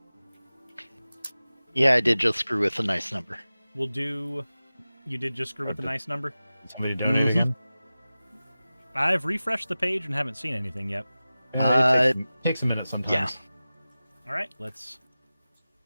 Yeah, I did just screw with a nice number. We'll do. You did just screw with the nice number? Somebody donate again? I've refreshed the page and haven't seen anything yet. It takes a minute sometimes. Yeah. All right,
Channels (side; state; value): both; inverted; correlation -0.96